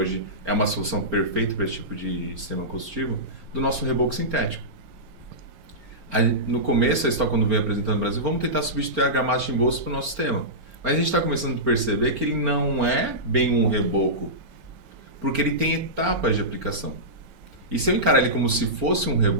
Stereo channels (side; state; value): left; late; 4.4 ms